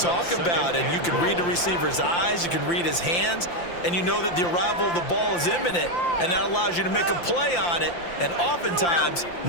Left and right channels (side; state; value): right; late; 5.8 ms